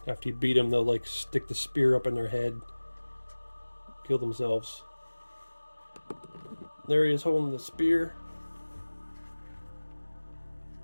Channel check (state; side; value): inverted; both; correlation -1.00